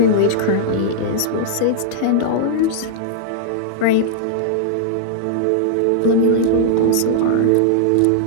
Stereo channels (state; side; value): different; both; correlation -0.01